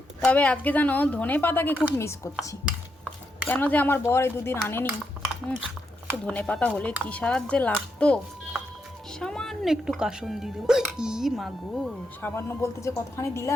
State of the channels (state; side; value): normal; both; correlation 0.82